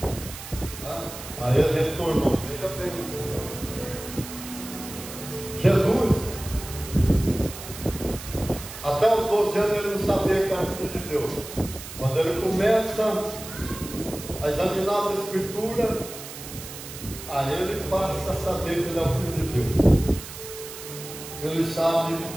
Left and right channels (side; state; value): right; noise; hiss, 12 dB below the sound